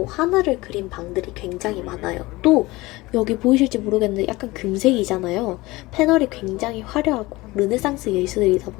하늘을 그린 방들이 굉장히 많아요. 또 여기 보이실지 모르겠는데 약간 금색이잖아요. 패널이 굉장히 화려하고 르네상스 예술이다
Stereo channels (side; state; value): right; quieter; 20.8 dB